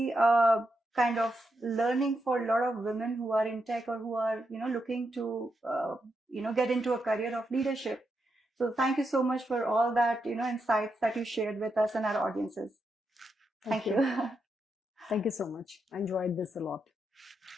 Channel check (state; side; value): normal; both; correlation 0.84